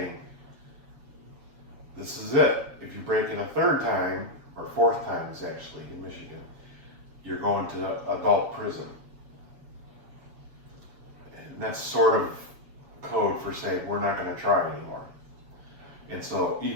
this is it. If you break it a third time, or fourth time is actually in Michigan, you're going to adult prison. And that's sort of code for saying we're not going to try anymore. And so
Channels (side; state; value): left; late; 7.1 ms